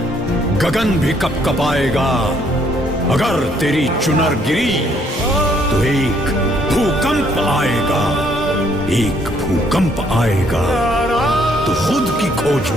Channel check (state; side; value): normal; both; correlation 0.67